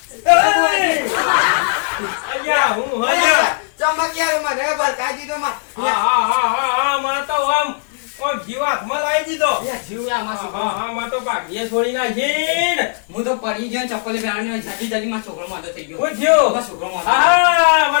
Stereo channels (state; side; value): silent; right; 58 dB below the other